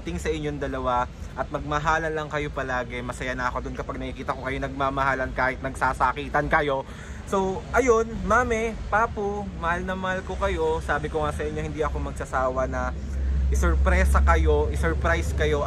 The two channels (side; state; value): both; identical; correlation 1.00